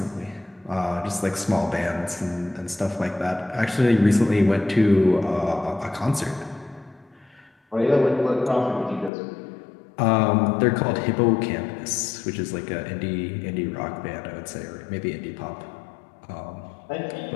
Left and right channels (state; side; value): drops out; right; at 9.1 s